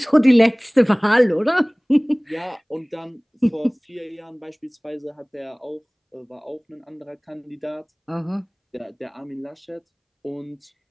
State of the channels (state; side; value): identical; both; correlation 1.00